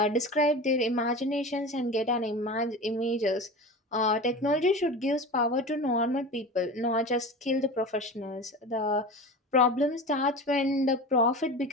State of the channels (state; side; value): normal; both; correlation 0.31